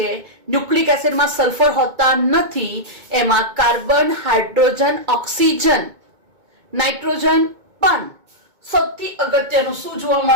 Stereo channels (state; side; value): late; left; 2.2 ms